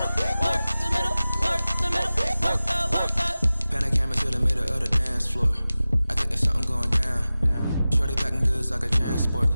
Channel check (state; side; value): inverted; both; correlation -0.96